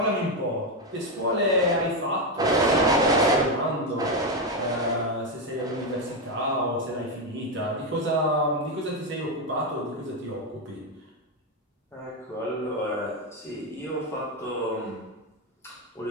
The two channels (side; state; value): both; normal; correlation 0.08